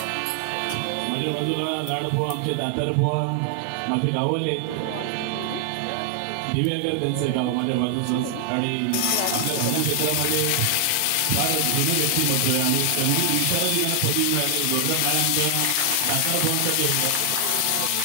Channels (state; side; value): different; both; correlation 0.00